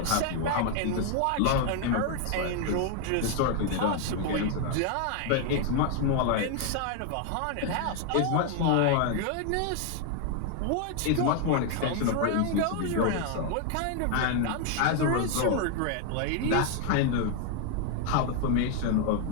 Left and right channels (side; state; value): both; different; correlation 0.00